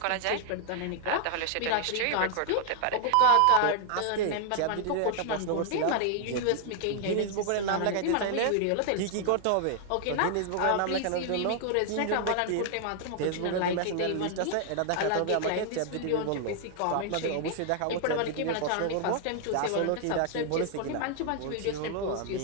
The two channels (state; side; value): different; both; correlation 0.00